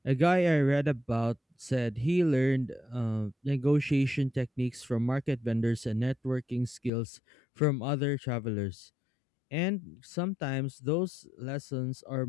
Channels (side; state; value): right; drops out; at 6.9 s